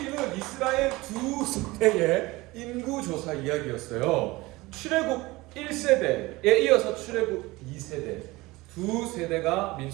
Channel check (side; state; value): left; quieter; 21.0 dB